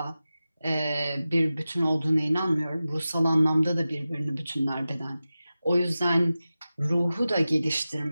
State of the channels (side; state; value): both; inverted; correlation -0.95